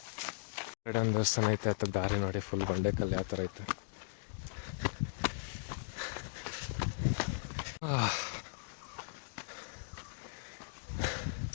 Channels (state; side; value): silent; right; digital silence